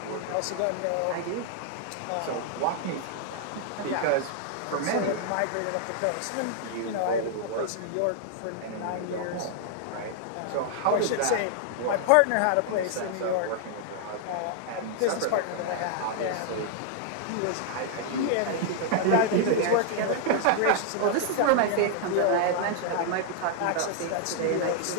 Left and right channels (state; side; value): different; both; correlation -0.01